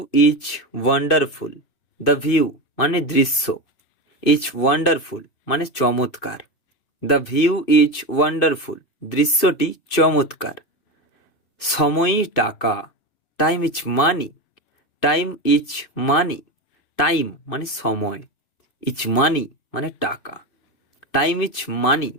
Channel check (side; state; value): right; late; 2.6 ms